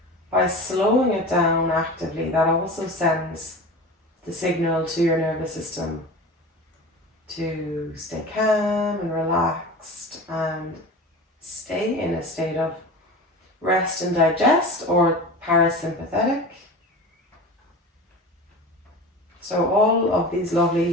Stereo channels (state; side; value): normal; both; correlation 0.33